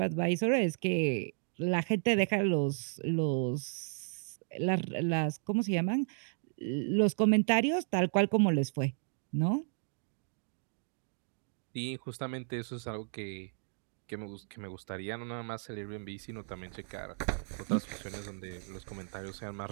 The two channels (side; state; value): left; silent; digital silence